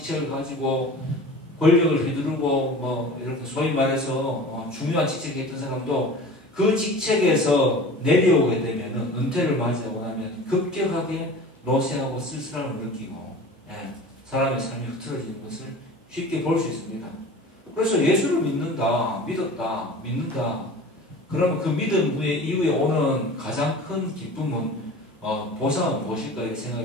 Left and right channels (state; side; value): normal; both; correlation 0.39